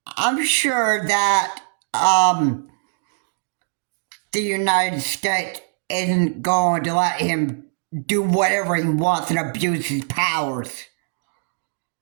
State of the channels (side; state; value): left; silent; digital silence